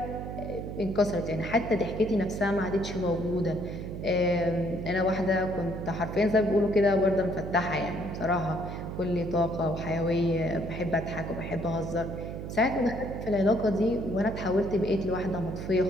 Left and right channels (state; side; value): noise; right; hum, 7 dB below the sound